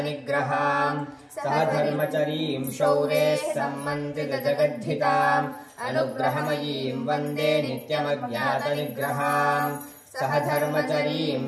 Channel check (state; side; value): identical; both; correlation 1.00